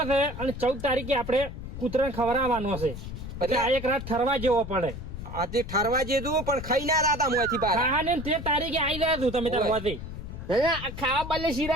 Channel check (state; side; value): noise; left; rumble, 9 dB below the sound